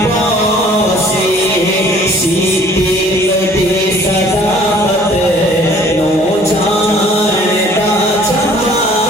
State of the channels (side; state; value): both; normal; correlation 0.54